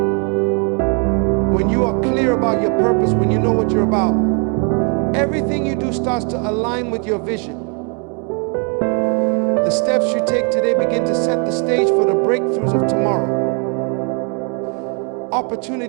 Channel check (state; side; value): quieter; left; 37.7 dB